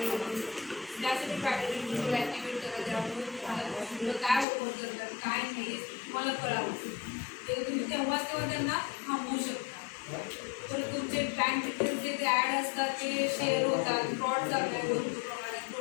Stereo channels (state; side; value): drops out; right; at 4.5 s